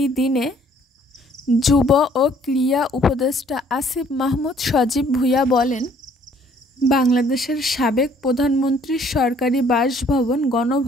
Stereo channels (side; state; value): both; normal; correlation 0.60